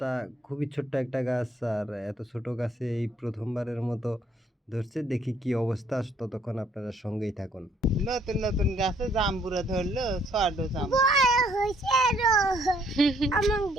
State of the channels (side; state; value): both; normal; correlation 0.66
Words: খুবই ছোট্ট একটা গাছ আর এত ছোট গাছে এই ১ম বারের মতো ধরছে। দেখি কী অবস্থা। ততক্ষণ আপনারা সঙ্গেই থাকুন। নতুন নতুন গাছে জাম্বুরা ধরলো ছোট জাম্বুরা